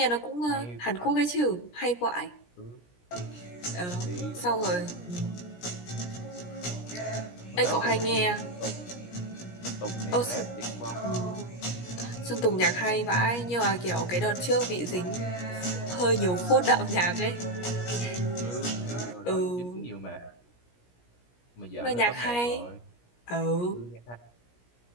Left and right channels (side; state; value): right; late; 17 ms